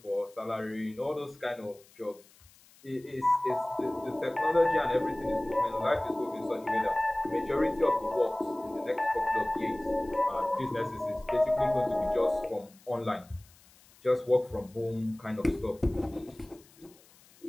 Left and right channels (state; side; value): noise; left; hiss, 27 dB below the sound